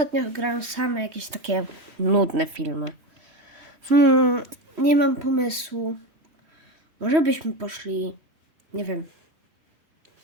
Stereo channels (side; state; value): left; late; 3.1 ms